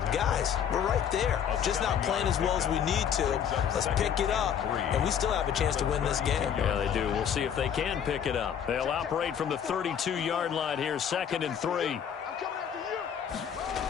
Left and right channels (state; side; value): quieter; right; 8.4 dB